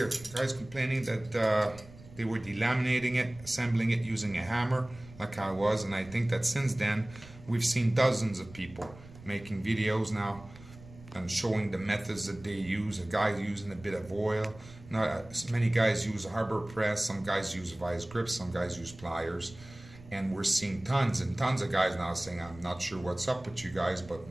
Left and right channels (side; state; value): right; noise; rumble, 19 dB below the sound